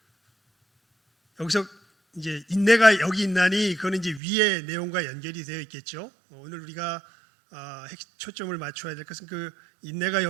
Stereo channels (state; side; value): drops out; left; at 4.2 s